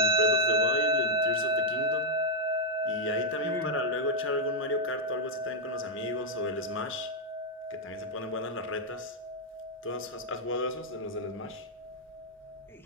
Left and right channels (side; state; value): both; normal; correlation -0.04